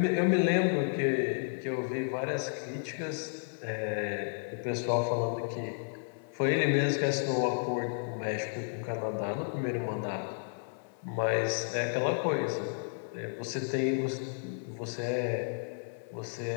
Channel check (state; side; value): silent; right; 55 dB below the other